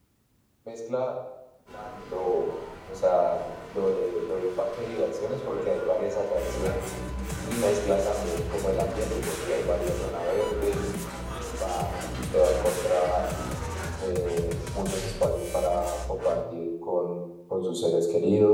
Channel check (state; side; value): identical; both; correlation 1.00